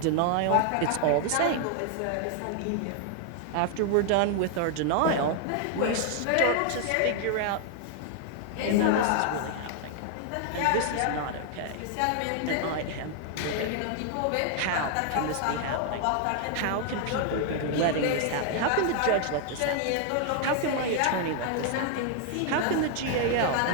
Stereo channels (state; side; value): different; both; correlation 0.00